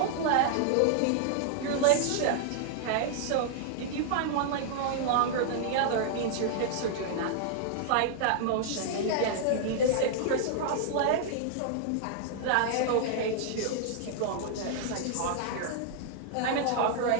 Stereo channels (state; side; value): different; both; correlation -0.01